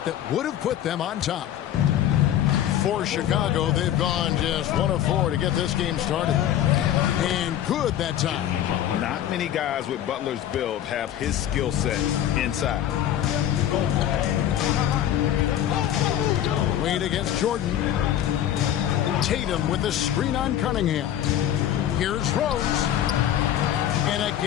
that would have put them on top. For Chicago, they've gone just 1 of 4 to get this game started. And good that time. Not many guys with Butler's build have his skill set inside. Wade against Jordan. Tatum with the screen on Cunningham. Here's Rose. And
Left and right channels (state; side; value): quieter; right; 11.3 dB